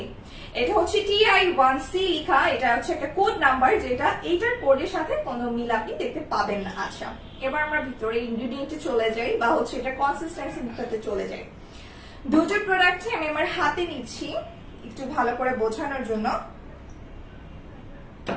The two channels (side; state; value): both; identical; correlation 1.00